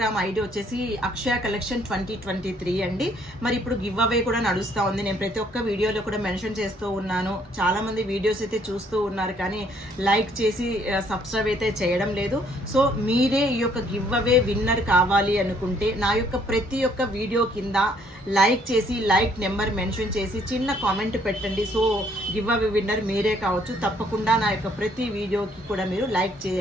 ఐడి వచ్చేసి అక్షయ కలెక్షన్ 2023 అండి. మరి ఇప్పుడు గివ్ అవే కూడా నడుస్తూ ఉంది. నేను ప్రతి ఒక్క వీడియోలో కూడా మెన్షన్ చేస్తూ ఉన్నాను. చాలామంది వీడియోస్ అయితే చూస్తూ ఉన్నారు కానీ లైక్ చేసి సబ్స్క్రైబ్ అయితే చేయడం లేదు. సో మీరే ఈ యొక్క గివ్ అవే విన్నర్ కావాలి అనుకుంటే నా యొక్క ప్రతి ఒక్క వీడియో కింద లైక్ చేసి లైక్ నెంబర్ మెన్షన్ చేసి చిన్న కామెంట్ పెట్టండి. సో గివ్ అవే విన్నర్ మీరే కావచ్చు. తప్పకుండా నా యొక్క ప్రతి వీడియోకి కూడా మీరు లైక్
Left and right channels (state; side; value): normal; both; correlation 0.65